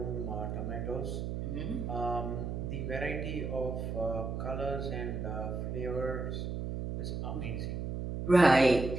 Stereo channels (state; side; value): noise; right; hum, 3 dB below the sound